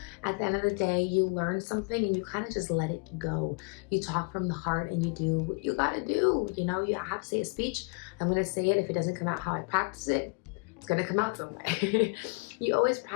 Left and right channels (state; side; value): quieter; right; 33.2 dB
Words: At the end of the day, you learn something and you kind of just let it go. You talk from the heart and you do what you gotta do. You know, you have to say a speech. I'm gonna say it. If it doesn't come out how I practice it, it's gonna come out some way. You always